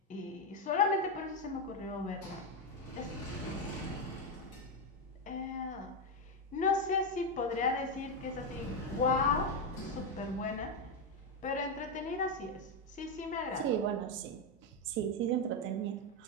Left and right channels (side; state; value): both; normal; correlation 0.07